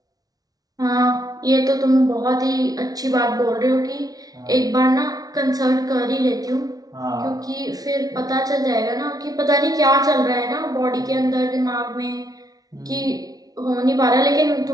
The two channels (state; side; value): late; left; 0.18 ms